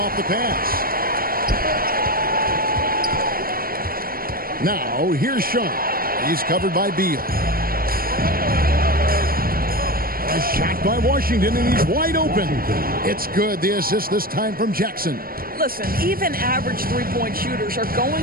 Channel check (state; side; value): late; left; 0.43 ms